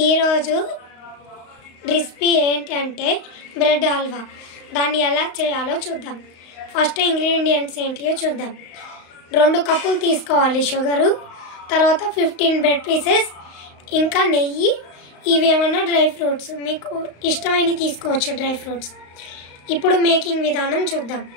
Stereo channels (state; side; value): late; right; 35 ms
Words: ఈరోజు రెసిపీ ఏంటంటే బ్రెడ్ హల్వా. దాన్ని ఎలా చేయాలో చూద్దాం. ఫస్ట్ ఇంగ్రీడియంట్స్ ఏంటియో చూద్దాం. 2 కప్పులు తీసుకోవాలి షుగరు, తర్వాత 15 బ్రెడ్ పీసెస్, ఇంకా నెయ్యి. ఇవి ఏమన్నా డ్రై ఫ్రూట్స్, మీకు ఇష్టమైనవి తీసుకోవచ్చు డ్రై ఫ్రూట్స్. ఇప్పుడు మేకింగ్ విధానం చూద్దాం.